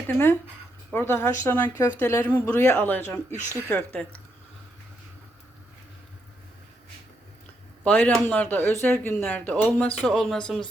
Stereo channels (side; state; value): both; normal; correlation 0.79